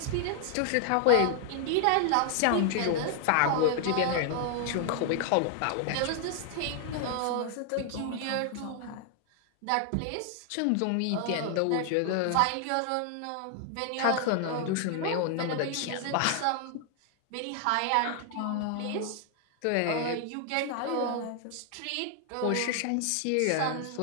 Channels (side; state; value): both; different; correlation 0.00